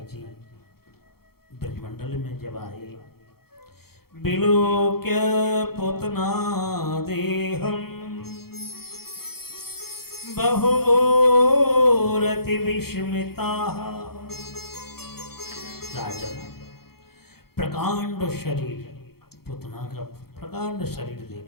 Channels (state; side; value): late; right; 0.95 ms